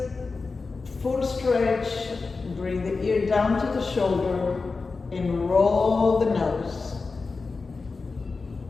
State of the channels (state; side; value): quieter; right; 4.2 dB